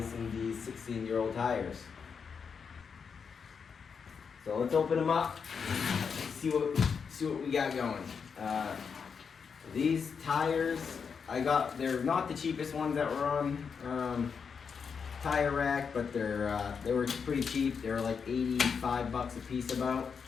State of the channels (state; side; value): quieter; right; 6.1 dB